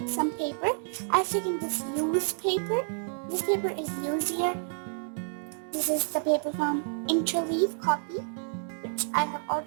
some paper. I've taken this used paper. This paper is used here. This is the paper from Interleaf copy, which I have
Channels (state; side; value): silent; left; digital silence